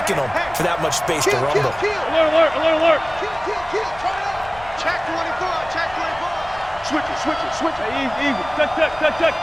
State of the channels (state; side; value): noise; left; rumble, 20 dB below the sound